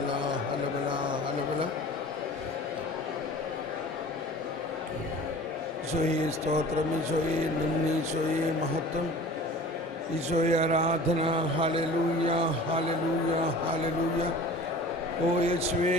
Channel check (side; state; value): both; normal; correlation 0.42